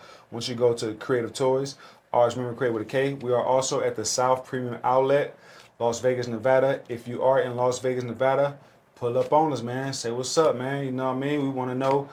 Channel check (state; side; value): identical; both; correlation 1.00